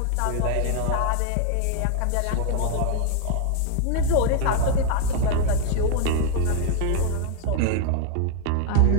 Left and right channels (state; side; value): different; both; correlation 0.00